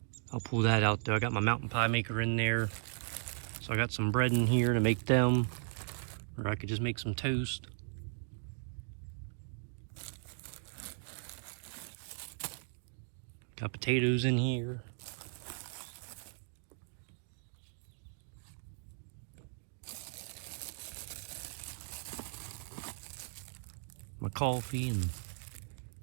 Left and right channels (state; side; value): silent; left; digital silence